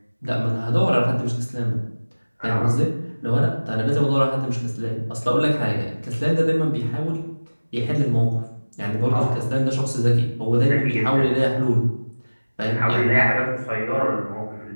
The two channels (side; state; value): both; inverted; correlation -1.00